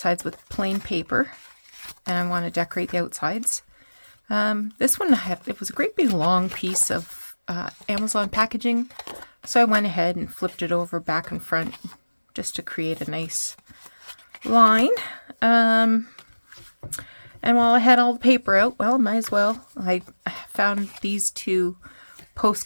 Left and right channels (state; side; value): inverted; both; correlation -1.00